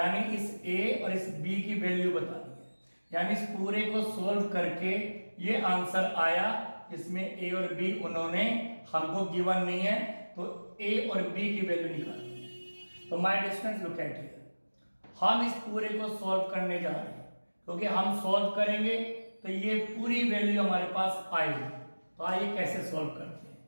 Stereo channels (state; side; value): inverted; both; correlation -1.00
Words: इस ए और इस बी की वैल्यू बतानी है। यानी इस पूरे को सोल्व करके ये आंसर आया, इसमें ए और बी उन्होंने हमको गिवन नहीं है, तो ए और बी की वैल्यू निकालनी है। तो my distance look at here, हम इस पूरे को सॉल्व करने जा रहे हैं, क्योंकि हम सॉल्व करेंगे तो ये पूरी वैल्यू हमारे पास आएगी। तो आइए कैसे सॉल्व करते हैं।